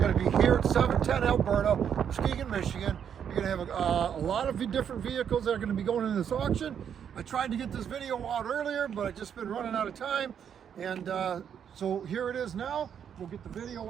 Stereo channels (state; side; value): quieter; left; 8.3 dB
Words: to be here at 710 Alberta, Muskegon, Michigan. You're going to have a lot of different vehicles that are going to be going in this auction. I tried to get this video out earlier, but I've just been running out of time. And so here it is now. We'll get the video